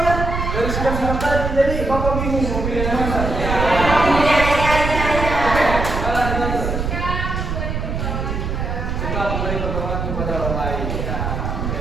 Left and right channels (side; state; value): right; noise; rumble, 3 dB below the sound